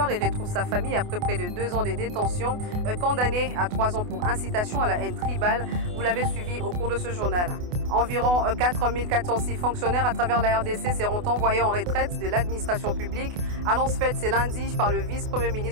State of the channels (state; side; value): late; left; 28 ms